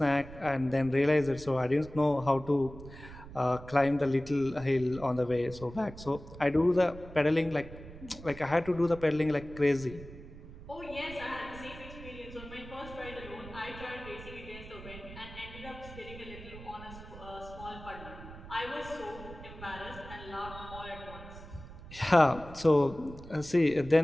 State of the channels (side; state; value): right; noise; rumble, 15 dB below the sound